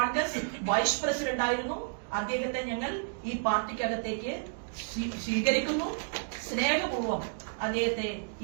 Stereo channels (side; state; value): left; silent; digital silence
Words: വൈസ് പ്രസിഡന്റ് ആയിരുന്നു. അദ്ദേഹത്തെ ഞങ്ങൾ ഈ പാർട്ടിക്കകത്തേക്ക് സ്വീകരിക്കുന്നു. സ്നേഹപൂർവ്വം അദ്ദേഹത്തെ